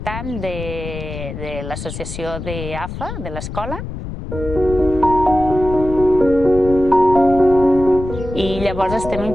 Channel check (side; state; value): left; noise; rumble, 9 dB below the sound